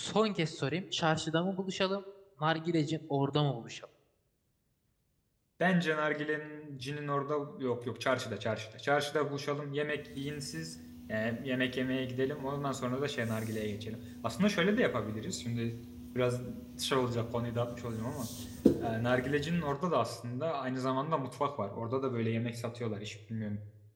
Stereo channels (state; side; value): identical; both; correlation 1.00